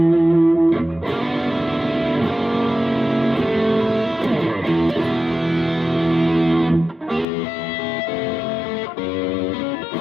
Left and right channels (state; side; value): drops out; right; at 7.2 s